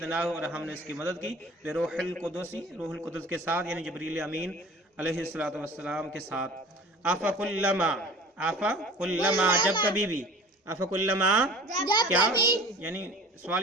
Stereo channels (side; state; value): both; normal; correlation 0.42